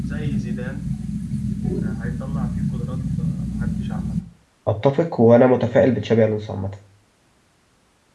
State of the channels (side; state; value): both; identical; correlation 1.00